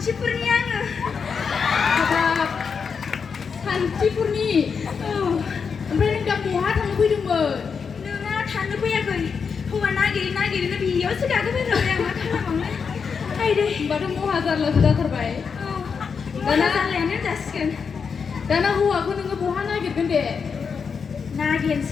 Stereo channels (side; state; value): right; quieter; 5.9 dB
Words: आङो हाबाब सान्थिफुरनि ओमफ्राय नों दा बहा थांनो फैदोंमोन नोंना थांनो फैयाखै हौवा नागिरनो बेयावसो गाखोफैबाय आं मा खालामबावनो आइदै होनबाथ' महा जारलासो जाथारबाय दाना जारलायानो जासिगोन दाना हौवाखौ नोङो बहा नागिरगोन दे